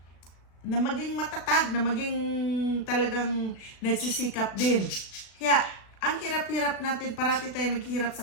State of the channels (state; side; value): late; right; 36 ms